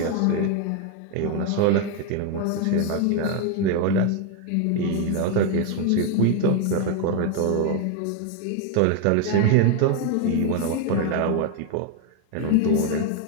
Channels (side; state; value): both; different; correlation 0.01